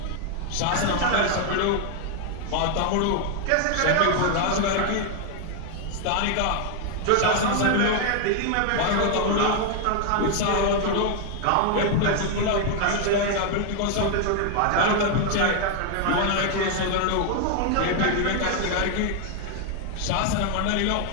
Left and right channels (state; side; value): different; both; correlation 0.00